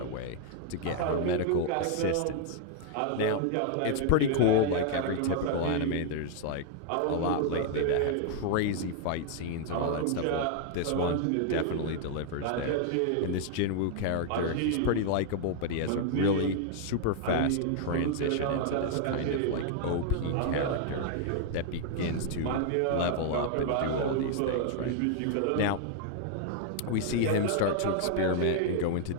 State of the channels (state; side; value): different; both; correlation 0.00